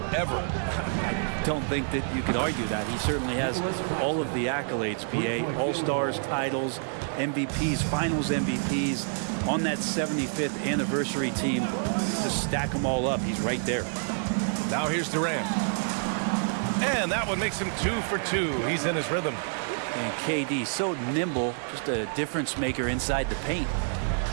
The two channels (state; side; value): silent; left; digital silence